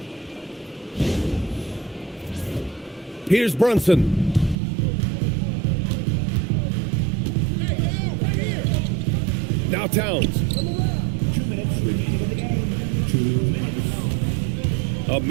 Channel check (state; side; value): drops out; left; at 4.5 s